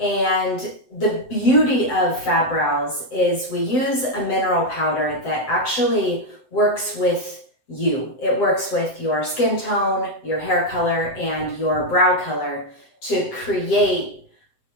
the beauty of Fab Brows is we use a mineral powder that actually works with you. It works with your skin tone, your hair color, and your brow color to create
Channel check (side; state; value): right; late; 7.8 ms